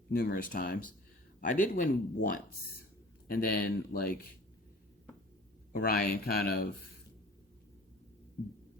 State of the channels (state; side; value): normal; both; correlation 0.45